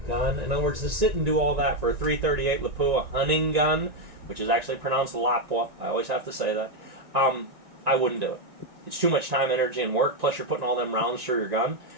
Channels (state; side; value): late; left; 1.9 ms